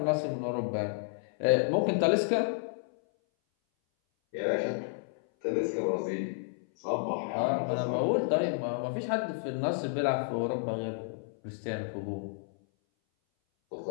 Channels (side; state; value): right; silent; 57 dB below the other